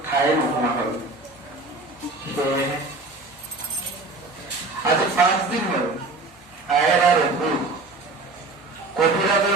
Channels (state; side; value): quieter; left; 3.4 dB